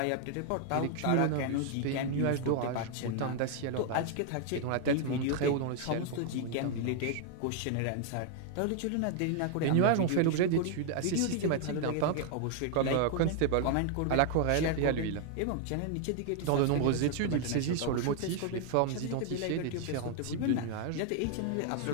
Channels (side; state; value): both; different; correlation 0.00